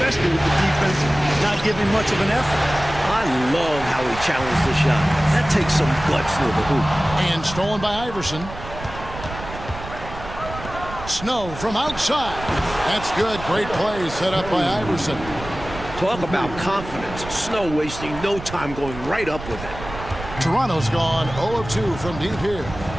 with the defense not giving much of an effort. I love how he challenged the shot. That takes some guts near the hoop. And stolen by Iverson. Snow from outside. That's good. Great play set up by Iverson. Talk about confidence. Snow wasting no time going right up with it. Toronto's gone 0 of 2 from deep here.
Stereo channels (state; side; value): noise; right; rumble, 12 dB below the sound